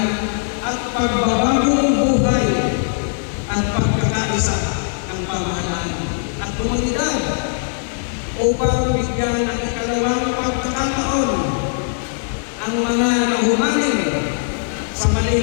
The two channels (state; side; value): silent; right; 66 dB below the other